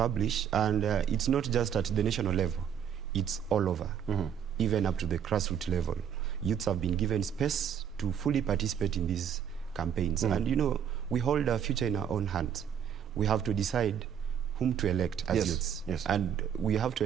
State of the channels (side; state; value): left; quieter; 8.6 dB